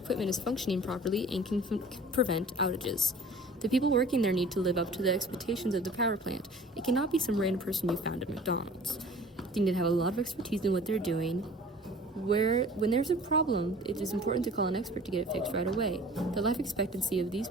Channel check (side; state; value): both; normal; correlation 0.46